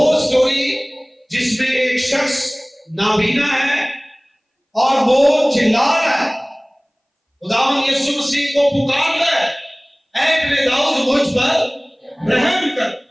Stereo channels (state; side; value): identical; both; correlation 1.00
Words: स्टोरी जिसमें एक शख्स नाबीना है और वो चिल्ला रहा है, खुदावंद यीशु मसीह को पुकार रहा है, ऐ इब्ने दाऊद मुझ पर रहम कर।